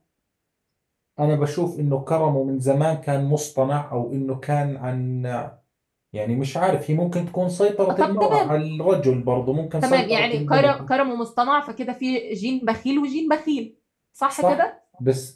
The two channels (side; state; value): both; identical; correlation 1.00